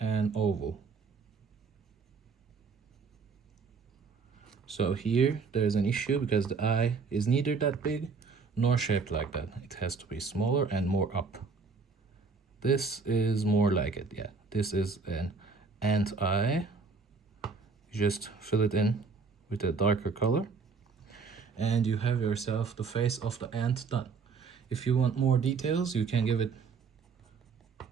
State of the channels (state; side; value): quieter; left; 4.8 dB